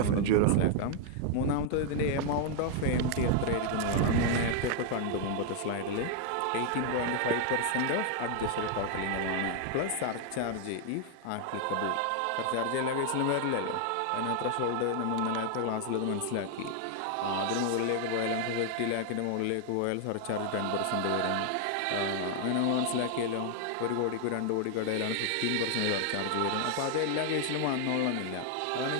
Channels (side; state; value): both; different; correlation 0.00